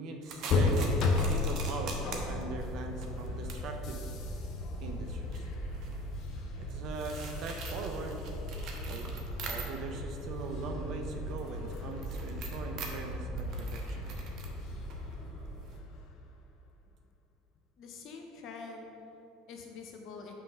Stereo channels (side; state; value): both; normal; correlation 0.41